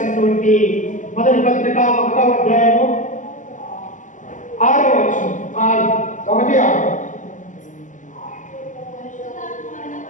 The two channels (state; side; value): late; right; 0.37 ms